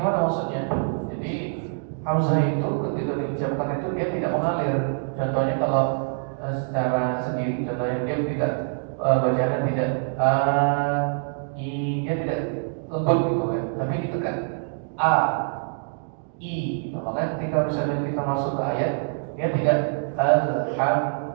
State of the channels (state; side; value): silent; left; digital silence